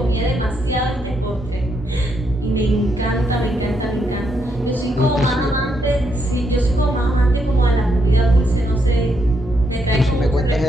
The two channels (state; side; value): normal; both; correlation 0.78